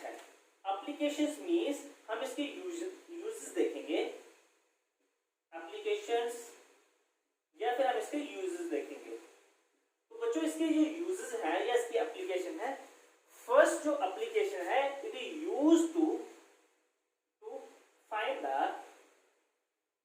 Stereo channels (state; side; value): identical; both; correlation 1.00